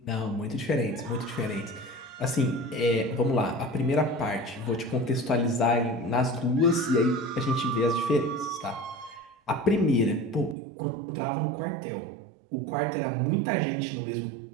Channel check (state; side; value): drops out; left; at 10.6 s